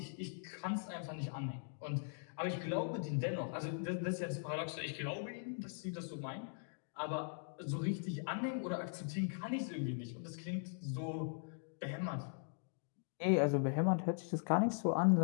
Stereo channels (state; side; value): silent; right; digital silence